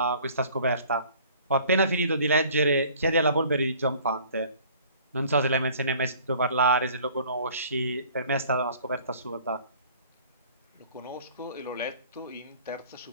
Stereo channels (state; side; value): inverted; both; correlation -0.52